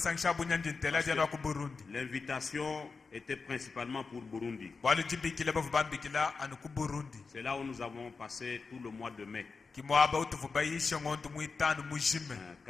bunyanji ntela jana ku Burundi. L'invitation était principalement pour Burundi. Walu jibikila bavubambikila anu ku Burundi. C'est là où nous avons passé tout le mois de mai. Kimwaba utuvubayisha ngondu mwitanu mujime.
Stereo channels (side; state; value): right; quieter; 4.6 dB